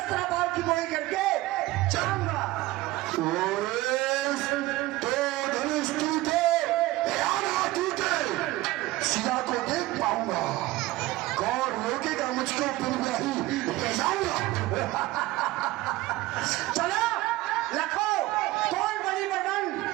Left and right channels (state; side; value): quieter; left; 18.1 dB